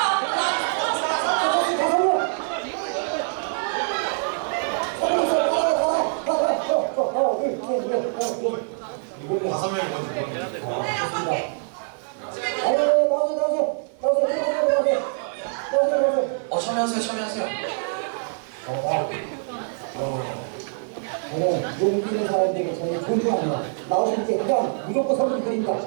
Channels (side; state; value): left; silent; digital silence